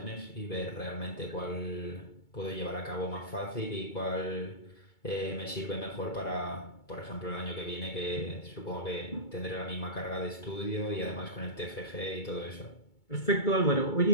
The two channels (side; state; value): right; late; 2.2 ms